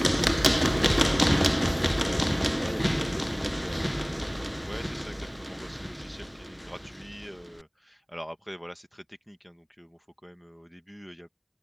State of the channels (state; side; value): identical; both; correlation 1.00